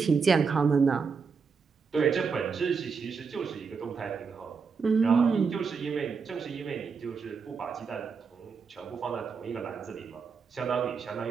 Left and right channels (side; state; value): left; quieter; 5.5 dB